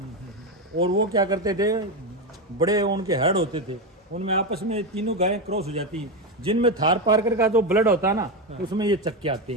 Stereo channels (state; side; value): normal; both; correlation 0.12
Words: और वो क्या करते थे, बड़े उनके हेड होते थे, उनमें आपस में तीनों गायें क्रॉस हो जाती हैं। जिनमें थार पारकर का जो ब्लड होता है ना, उसमें ये चक्के आते